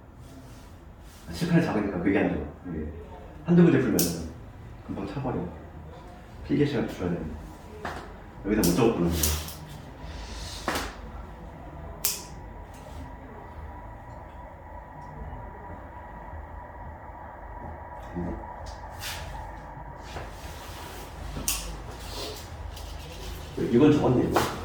실판이 작으니까 그게 안 좋아. 이게 한두 문제 풀면 금방 차버려. 필기 시간 줄여야 돼. 여기다 못 적었구나. 이건 적었네 이거.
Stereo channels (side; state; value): both; identical; correlation 1.00